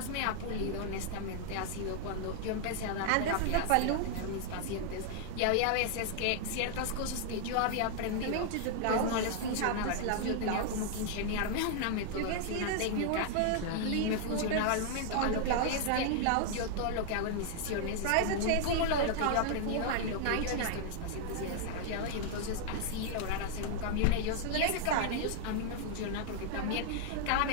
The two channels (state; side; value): different; both; correlation 0.00